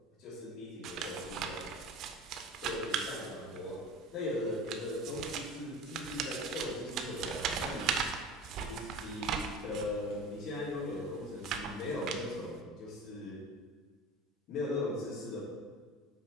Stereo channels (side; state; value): both; normal; correlation 0.36